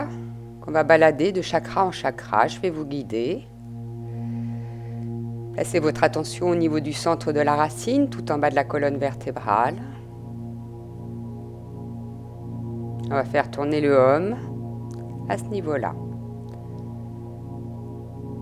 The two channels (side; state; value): both; identical; correlation 1.00